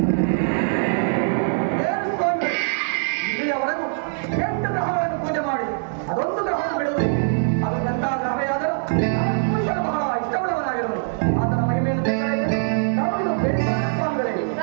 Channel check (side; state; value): left; silent; digital silence